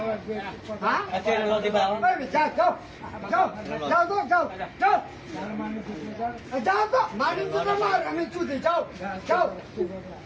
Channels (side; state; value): both; identical; correlation 1.00